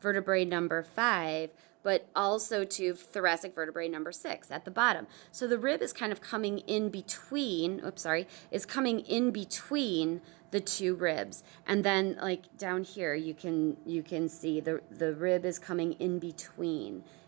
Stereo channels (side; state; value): left; quieter; 27.6 dB